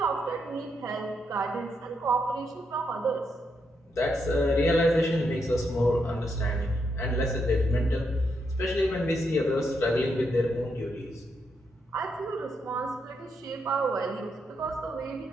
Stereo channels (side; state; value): both; normal; correlation 0.80